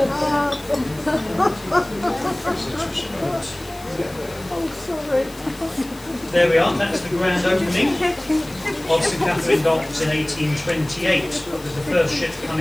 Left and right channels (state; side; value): noise; left; hiss, 21 dB below the sound